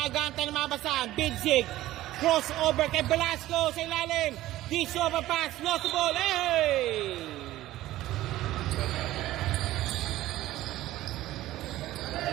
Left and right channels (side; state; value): left; quieter; 15.4 dB